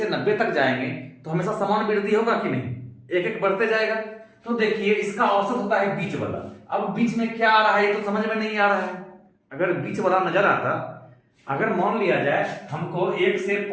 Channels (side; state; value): both; identical; correlation 1.00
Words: 90 तक जाएंगे तो हमेशा समान वृद्धि होगा कि नहीं, एक एक बढ़ते जाएगा। तो देखिए इसका औसत होता है बीच वाला। अब बीच में क्या आ रहा है ये तो समझ में नहीं आ रहा है। अगर बीच वाला नजर आता, अगर मान लिया जाए हमको 1 से